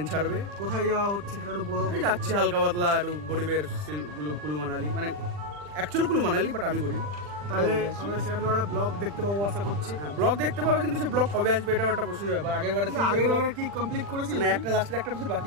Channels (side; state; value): left; late; 40 ms